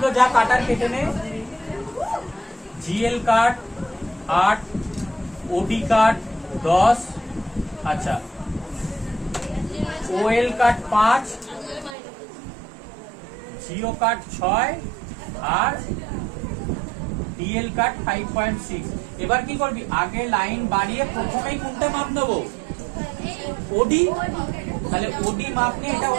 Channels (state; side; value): drops out; left; at 12.0 s